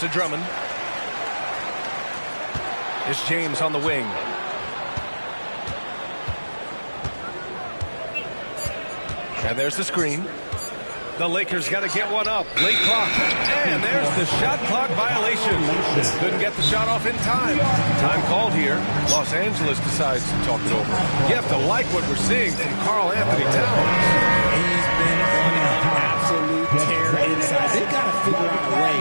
to Drummond. It's James on the wing. And there's the screen. The Lakers got to get one up. Late clock. And there's the shot clock violation. Couldn't get the shot off in time. Time called here. Los Angeles decides to talk it over. You have to like what we're seeing from Karl Anthony Towns. He's been on an absolute tear inside. They've got to figure out a way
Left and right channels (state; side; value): inverted; both; correlation -1.00